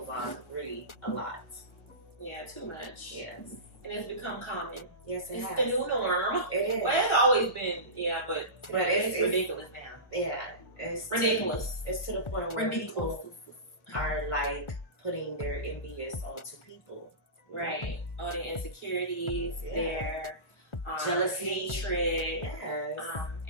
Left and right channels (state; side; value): late; right; 1.0 ms